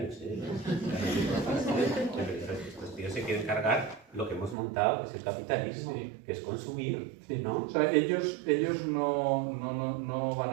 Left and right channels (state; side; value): drops out; left; at 4.5 s